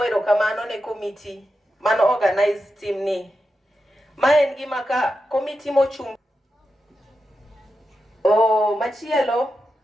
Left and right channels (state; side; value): normal; both; correlation 0.89